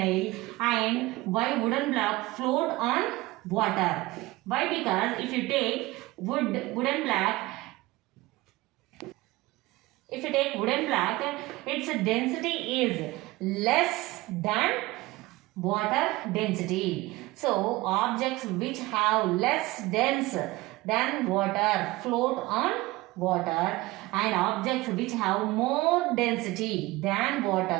and why wooden block float on water? Why? Because if you take wooden block, its density is less than water density. So objects which have less dense than water float on water, and objects which have more density than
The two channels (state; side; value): quieter; left; 20.0 dB